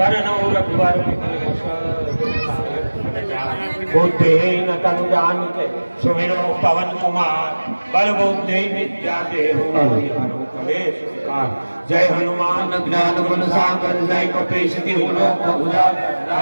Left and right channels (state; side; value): inverted; both; correlation -1.00